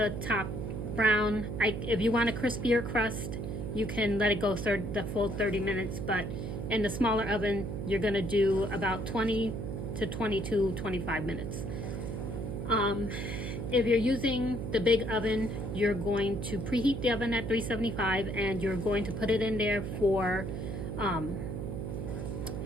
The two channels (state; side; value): noise; right; hum, 4 dB below the sound